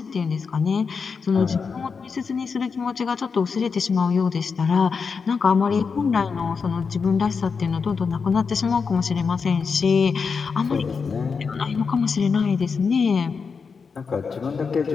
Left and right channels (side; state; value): right; quieter; 5.4 dB